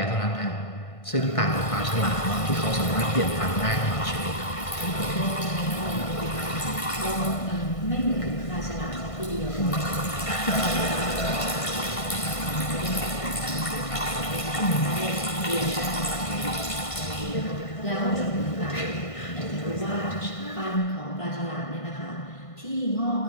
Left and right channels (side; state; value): right; late; 1.5 ms